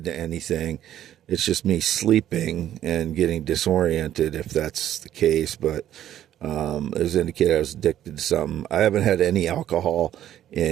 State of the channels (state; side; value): quieter; left; 11.7 dB